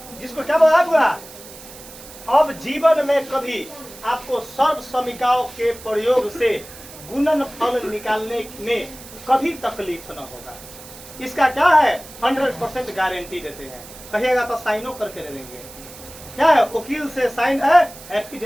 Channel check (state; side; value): noise; right; hiss, 17 dB below the sound